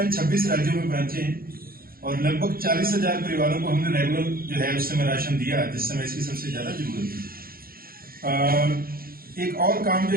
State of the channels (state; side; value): late; left; 0.43 ms